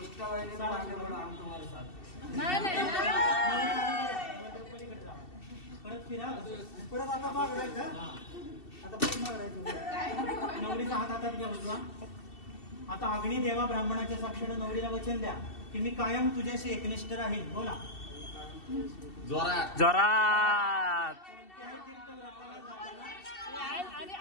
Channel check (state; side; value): late; right; 2.7 ms